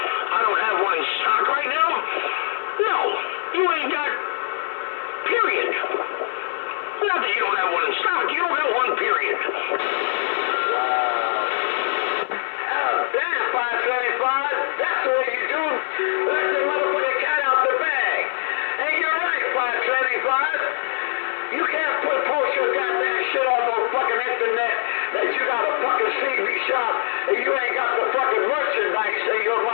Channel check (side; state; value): right; silent; 64 dB below the other